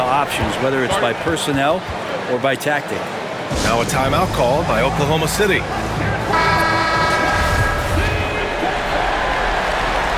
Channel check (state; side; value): identical; both; correlation 1.00